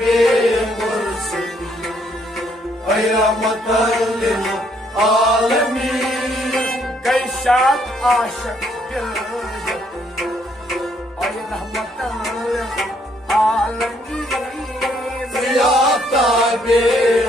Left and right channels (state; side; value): normal; both; correlation 0.69